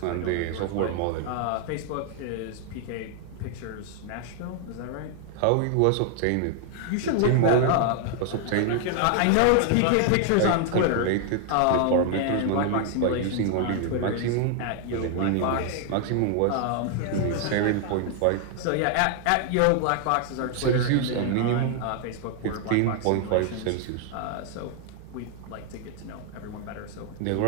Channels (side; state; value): both; different; correlation 0.00